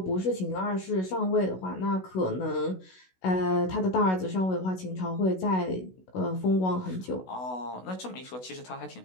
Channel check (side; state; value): right; late; 16 ms